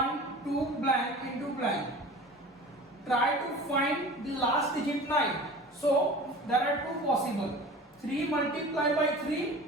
2 blank into blank. Try to find the last digit 9. So there are two possible. 3 multiplied by 3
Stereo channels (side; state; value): both; normal; correlation 0.39